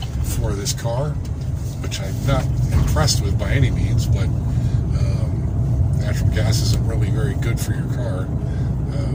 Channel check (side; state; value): both; identical; correlation 1.00